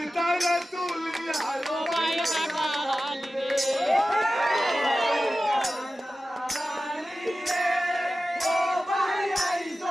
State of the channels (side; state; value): both; normal; correlation 0.94